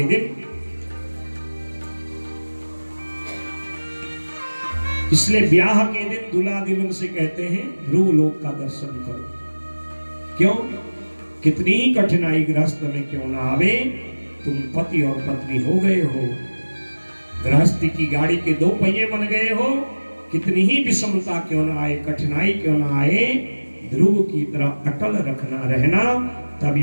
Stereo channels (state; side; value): inverted; both; correlation -1.00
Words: दिन, इसलिए ब्याह के दिन दूल्हा दुल्हन से कहते हैं ध्रुव लोक का दर्शन करो। क्यों? कितनी ही कठिनाई गृहस्थ में क्यों ना आवे, तुम पति और पत्नी हो गए हो, गृहस्थी की गाड़ी के दो पहिए बन गए हो, कितनी ही विषमता क्यों ना आए, कठिनाई क्यों ना आए, ध्रुव की तरह अटल रहना,